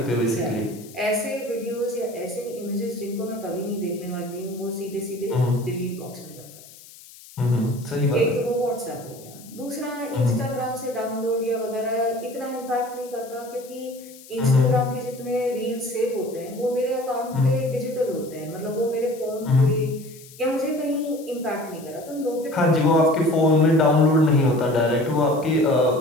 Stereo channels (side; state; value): left; noise; hiss, 20 dB below the sound